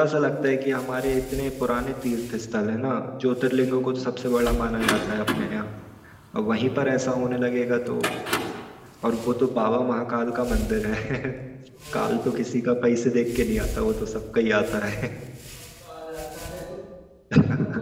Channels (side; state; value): both; identical; correlation 1.00